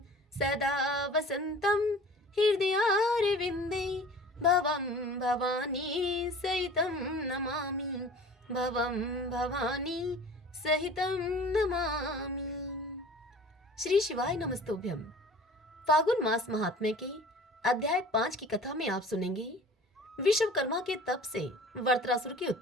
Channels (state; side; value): normal; both; correlation 0.44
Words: सदा वसन्तं हृदयारविन्दे भवं भवानी सहितं नमामि। भवं भवानी सहितं नमामि। श्री शिवाय नमस्तुभ्यं। फागुन मास महात्म्य के अध्याय 5 की कथा में आप सुनेंगे विश्वकर्मा के तप से वरत्रासुर की